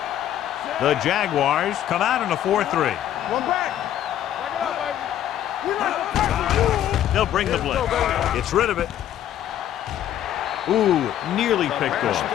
The Jaguars come out in a 4-3. One back. Back it up, baby. We like to fight the rules. They'll bring the blitz. Gets rid of it. Ooh, nearly picked off.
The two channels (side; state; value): right; quieter; 11.4 dB